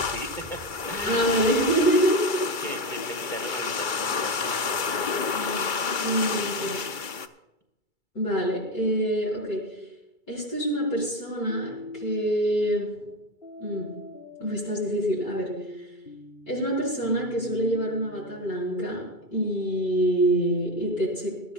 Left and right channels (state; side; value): late; right; 2.3 ms